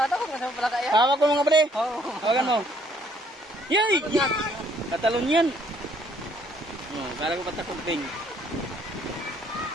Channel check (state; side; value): normal; both; correlation 0.65